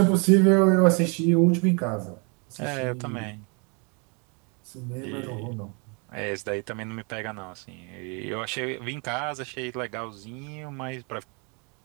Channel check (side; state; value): left; quieter; 34.0 dB